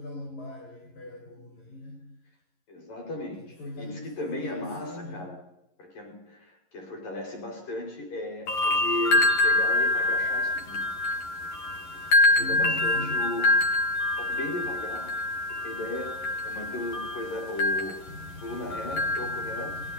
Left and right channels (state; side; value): late; right; 11 ms